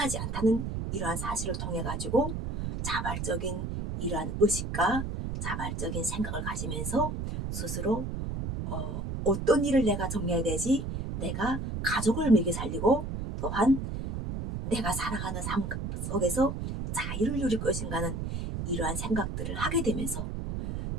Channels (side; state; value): right; noise; rumble, 4 dB below the sound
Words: 않다는 이러한 사실을 통해 가지고 자발적인 이러한 의식과 자발적인 생각을 가지면서 스스로 어떤 일을 내가 정리해야 되지, 내가 가족을 먹여 살리고 또한 내가 살아가는 삶 속에서 자유를 누릴 것인가 하는 이러한 생각들을 하게 되면서